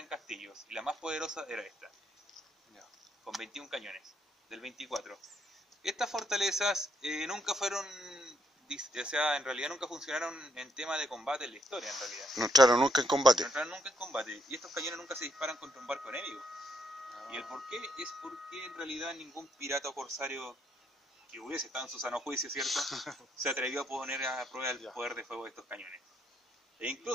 castillos. Y la más poderosa era esta, con 21 cañones, del 24. Estas fortalezas nunca fueron, o sea, en realidad nunca funcionaron en tema de combate en la historia, en realidad. No entraron nunca en combate. No entraron nunca en combate. Y estos cañones nunca se disparan contra un barco enemigo. Y el por qué es porque en realidad ningún pirata o corsario que hubiese estado en su sano juicio, ¿cierto?, se atrevió a poner a prueba el poder de fuego de estos cañones. E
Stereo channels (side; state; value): both; normal; correlation 0.73